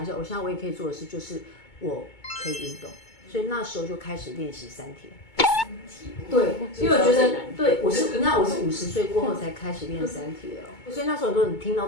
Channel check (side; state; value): right; late; 2.2 ms